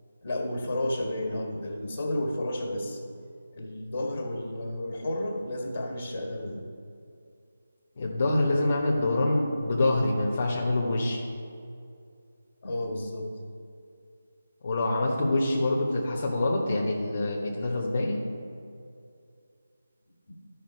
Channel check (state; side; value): inverted; both; correlation -0.92